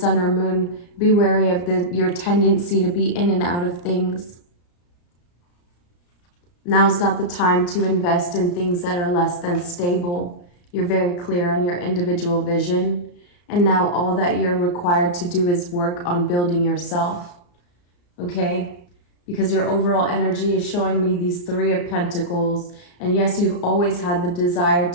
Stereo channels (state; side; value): late; right; 34 ms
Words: or moon, be wary of your tendency to be in and out of things. Now's not the time to invest in things that are less than stable. You're very clear on your individual vision. And now all that you're required to do is work on building yourself, okay? Because your overall energy is showing me these Three of Pentacles. And yes, you've always had the desire